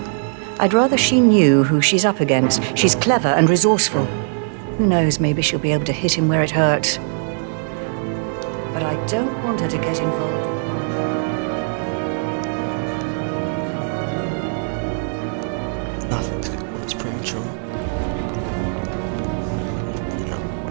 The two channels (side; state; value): left; silent; 59 dB below the other